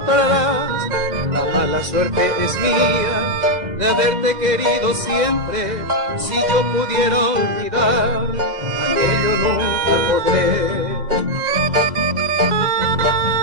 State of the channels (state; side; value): late; left; 2.1 ms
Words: La mala suerte es mía de haberte querido siempre. Si yo pudiera olvidar, aquello nunca podré.